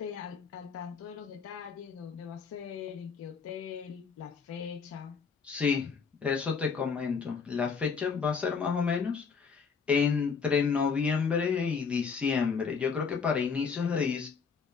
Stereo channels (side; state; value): right; quieter; 5.7 dB